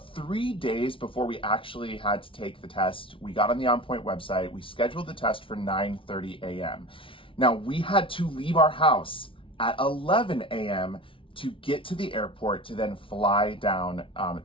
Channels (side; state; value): right; late; 0.25 ms